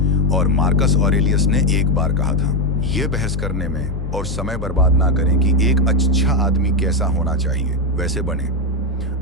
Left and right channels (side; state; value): both; normal; correlation 0.07